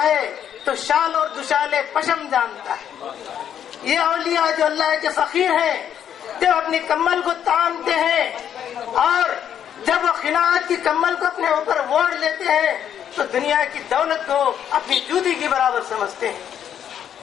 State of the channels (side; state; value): right; quieter; 9.4 dB